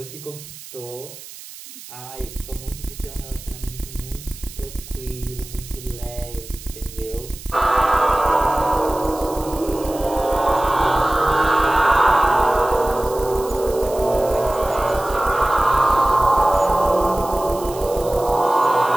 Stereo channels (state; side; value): noise; right; hiss, 16 dB below the sound